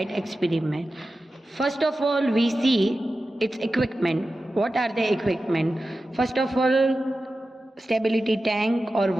experiment. First of all, we see its equipment. What are the equipment? First of all, stability tank or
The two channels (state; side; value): normal; both; correlation 0.93